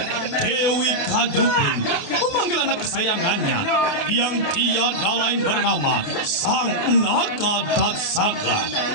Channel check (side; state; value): right; late; 28 ms